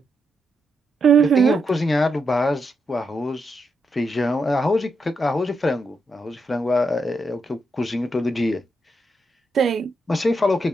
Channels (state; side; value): normal; both; correlation 0.82